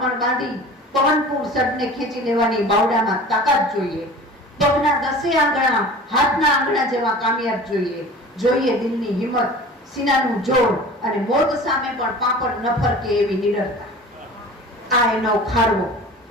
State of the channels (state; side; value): normal; both; correlation 0.40